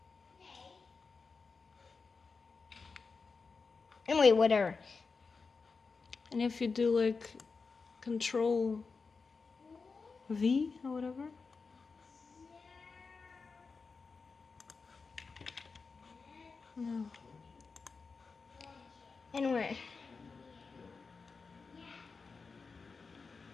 Anyway, whatever. And if you do like Control V or whatever. No. Anyway.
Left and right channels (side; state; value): right; quieter; 4.6 dB